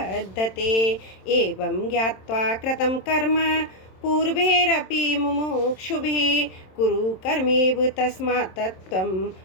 एवं ज्ञात्वा कृतं कर्म पूर्वैरपि मुमुक्षुभिः कुरु कर्मेव तस्मात् त्वं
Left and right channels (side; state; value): right; late; 27 ms